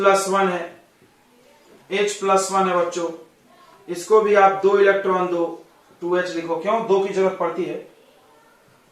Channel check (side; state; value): both; identical; correlation 1.00